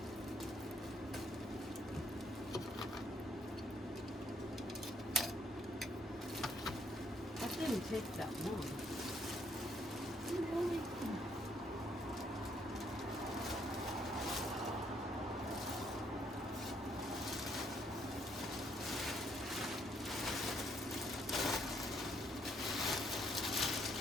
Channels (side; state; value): both; normal; correlation 0.70